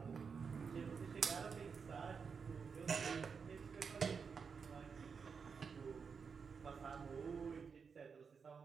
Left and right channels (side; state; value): left; quieter; 5.8 dB